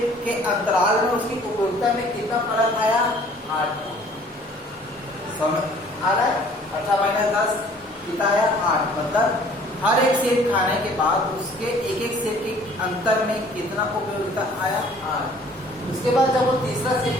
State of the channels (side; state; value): both; normal; correlation 0.54